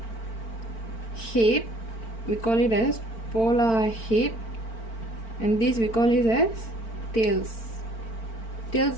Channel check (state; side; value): late; right; 4.4 ms